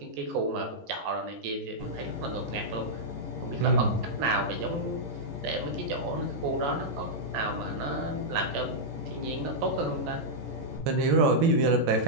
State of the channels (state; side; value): late; left; 14 ms